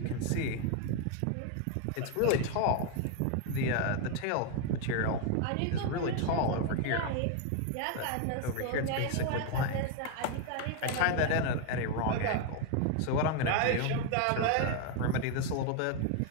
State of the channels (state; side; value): different; both; correlation 0.01